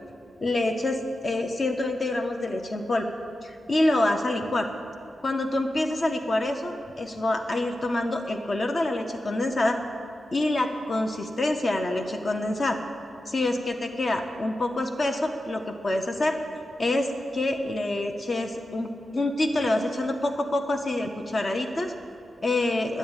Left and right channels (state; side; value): normal; both; correlation 0.91